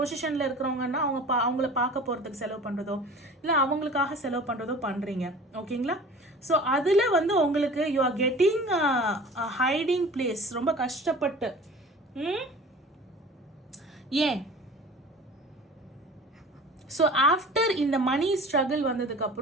இருக்கிறவங்கன்னா அவங்கள பார்க்க போகிறதுக்கு செலவு பண்ணுறதோ இல்லை அவங்களுக்காக செலவு பண்ணுறதோ பண்ணுறீங்க. ஓகேங்களா? ஸோ அதில் வந்து உங்களுக்கு you are getting hiding place ரொம்ப கஷ்டப்பட்டு. ஏன்? ஸோ ஆஃப்டர் இந்த மணி ஸ்ட்ரகிள்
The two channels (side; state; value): both; normal; correlation 0.42